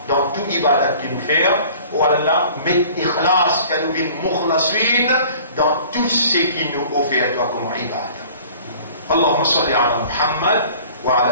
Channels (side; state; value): both; inverted; correlation -0.48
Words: dans tout ibadat qu'il nous fait, ou Allah, met ikhlas, que nous vînes mukhlasin, dans tout ce qui nous offre à toi comme ibadat. Allahumma salli ala Muhammad, wa